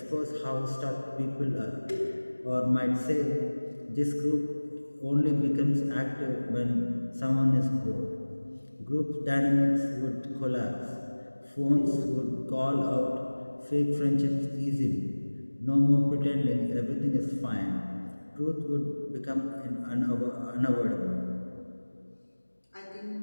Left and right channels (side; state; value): both; inverted; correlation -1.00